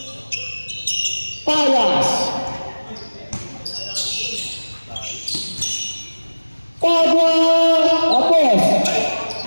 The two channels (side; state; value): both; inverted; correlation -1.00